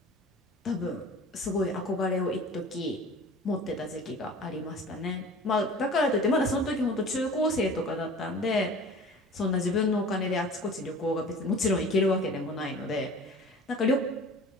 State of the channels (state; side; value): normal; both; correlation 0.43